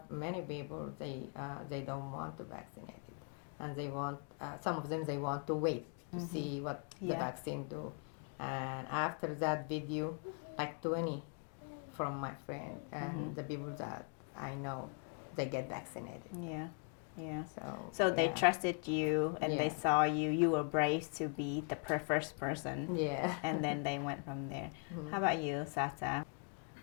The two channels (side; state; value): right; quieter; 39.7 dB